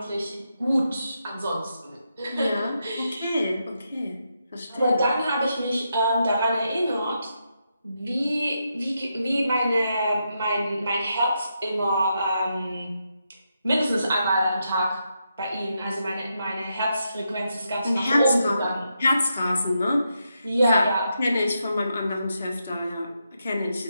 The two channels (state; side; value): inverted; both; correlation -0.83